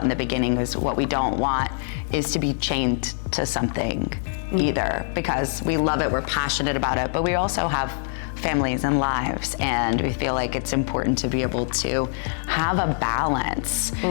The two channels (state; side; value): silent; right; 63 dB below the other